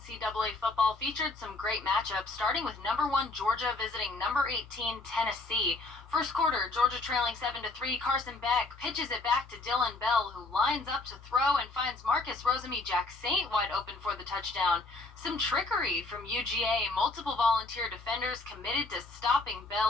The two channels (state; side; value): quieter; right; 3.4 dB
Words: football featured some great matchups, starting with number 1 Georgia visiting number 18 Tennessee. First quarter, Georgia trailing 7-3. Carson Beck pitches it back to Dylan Bell, who lines up to throw and finds Marcus Rosemy Jack Saint wide open for the touchdown. Some trickery from UGA. Multiple volunteer defenders committed to stopping